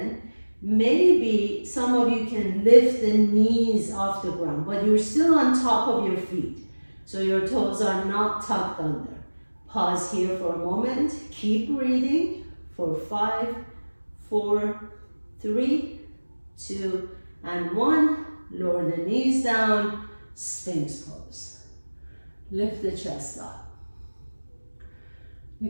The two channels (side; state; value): both; inverted; correlation -1.00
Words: Maybe some of you can lift the knees off the ground, but you're still on top of your feet. So your toes are not tucked under. Pause here for a moment. Keep breathing for 5, 4, 3, 2, and 1. Lower the knees down, Sphinx pose. Lift the chest up.